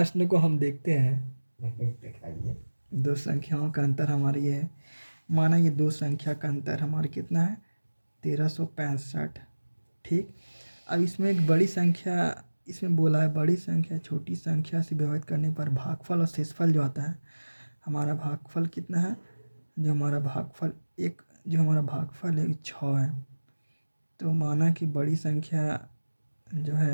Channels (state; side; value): inverted; both; correlation -1.00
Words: को हम देखते हैं। दिखाइए। दो संख्याओं का अंतर हमारी ये है। माना ये दो संख्या का अंतर हमारा कितना है, 1365। ठीक। अब इसमें एक बड़ी संख्या, इसमें बोला है बड़ी संख्या छोटी संख्या से विभाजित करने पर भागफल और शेषफल जो आता है, हमारा भागफल कितना है, जो हमारा भागफल है 6 है। तो माना कि बड़ी संख्या जो